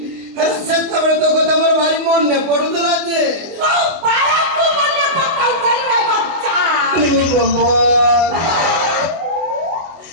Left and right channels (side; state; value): left; late; 24 ms